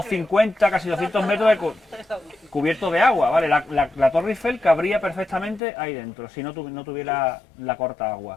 casi 200 metros de cubierto de agua, ¿vale? La Torre Eiffel cabría perfectamente ahí dentro, si no tuviera la corta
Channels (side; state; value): right; drops out; at 5.6 s